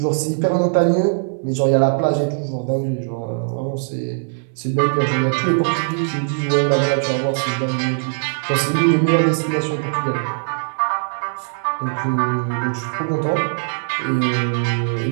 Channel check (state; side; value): silent; left; digital silence